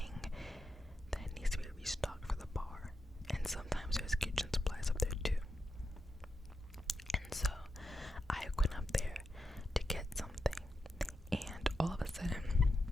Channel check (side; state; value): both; normal; correlation 0.87